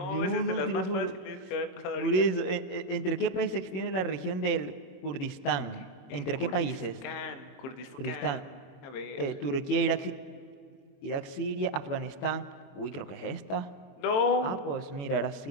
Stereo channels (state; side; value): late; right; 21 ms